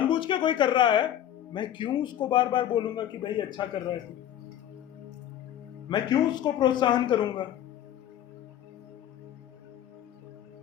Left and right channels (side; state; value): right; quieter; 11.1 dB